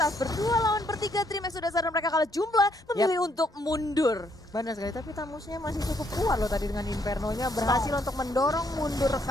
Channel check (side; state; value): both; normal; correlation 0.71